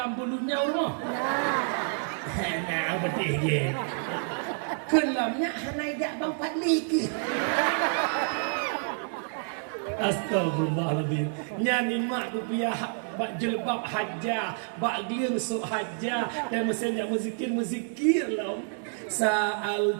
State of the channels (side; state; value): left; silent; 59 dB below the other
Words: bulunya rumah. Nah, betul je. Kelamnya naik bang Fadli ke? Astagfirullahaladzim. Nyanyi mak rupiah bak jelbab hajah, bak gliang sok hajah dan mesinnya muzikir lah.